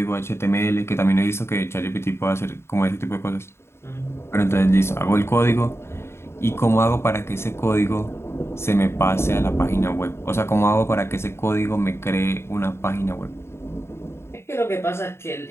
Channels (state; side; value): late; right; 0.12 ms